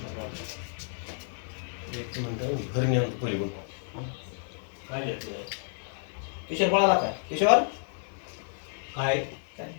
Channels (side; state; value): right; silent; 58 dB below the other